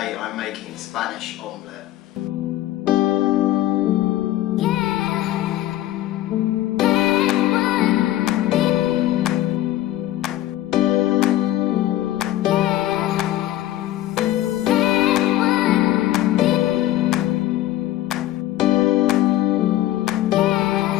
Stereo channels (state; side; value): quieter; right; 14.3 dB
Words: I'm making Spanish omelette.